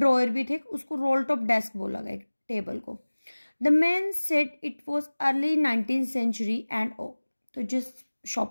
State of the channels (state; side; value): inverted; both; correlation -1.00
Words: भी थे, उसको रोल टॉप डेस्क बोला गया टेबल को. The man said it was early 19th century and ओ. तो जिस